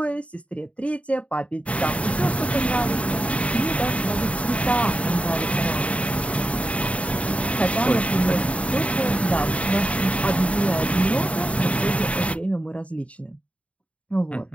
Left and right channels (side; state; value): right; late; 0.065 ms